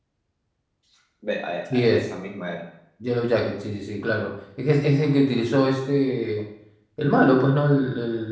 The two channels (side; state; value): both; identical; correlation 1.00